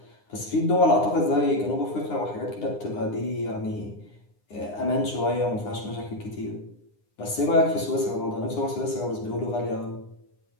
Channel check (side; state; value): right; late; 9.7 ms